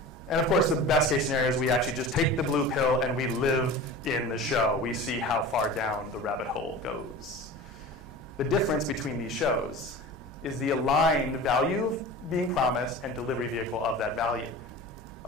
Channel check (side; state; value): both; normal; correlation 0.35